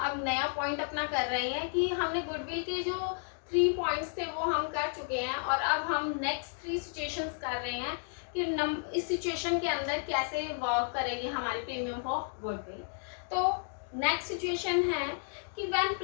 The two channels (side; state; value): right; silent; 56 dB below the other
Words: नया पॉइंट अपना कर रहे हैं कि हमने गुडविल के जो 3 पॉइंट्स थे वो हम कर चुके हैं और अब हम नेक्स्ट 3 सिचुएशंस कर रहे हैं कि इस सिचुएशन के अंदर कैसे वर्क करेगी हमारी प्रीमियम फॉर गुडविल। तो नेक्स्ट सिचुएशन है कि when